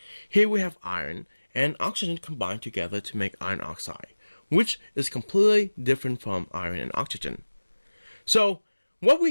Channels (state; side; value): inverted; both; correlation -1.00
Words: Here we have iron and oxygen combined together to make iron oxide, which is completely different from iron and oxygen. So, what